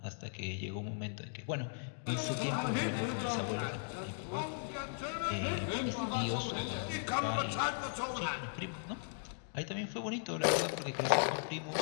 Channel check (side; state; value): right; silent; digital silence